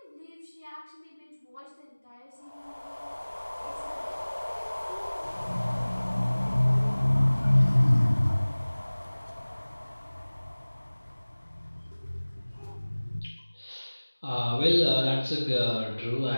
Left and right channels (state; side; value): inverted; both; correlation -1.00